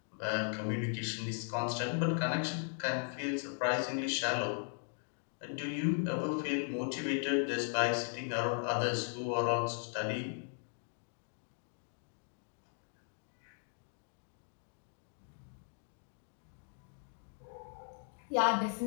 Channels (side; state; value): right; silent; 53 dB below the other